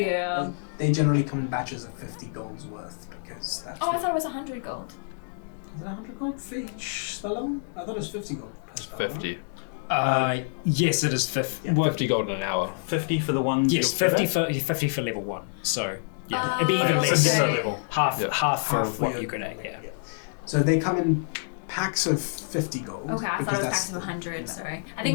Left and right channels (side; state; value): right; silent; digital silence